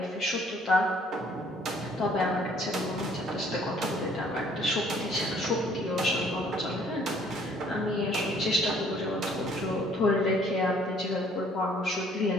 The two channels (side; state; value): both; normal; correlation 0.60